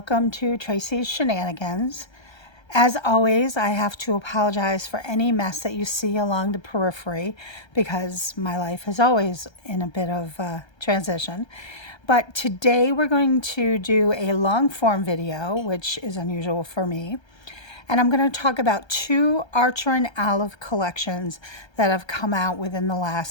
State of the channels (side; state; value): right; late; 1.3 ms